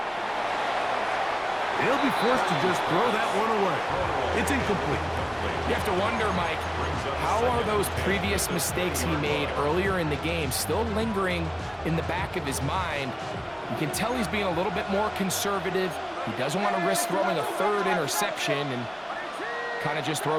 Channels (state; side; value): identical; both; correlation 1.00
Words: He'll be forced to just throw that one away. It's incomplete. You have to wonder, Mike, how are those previous mistakes he made earlier in the game still lingering in the back of his mind? You can tell he's being a little bit more conservative. He doesn't want to risk throwing a third interception and kind of just